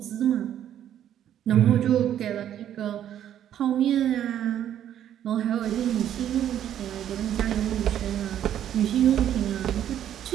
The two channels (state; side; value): quieter; left; 10.6 dB